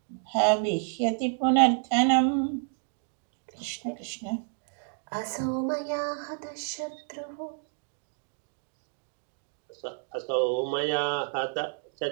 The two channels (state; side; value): silent; left; 58 dB below the other